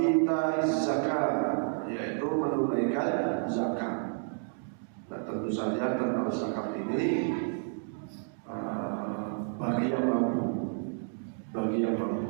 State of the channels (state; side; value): silent; left; 57 dB below the other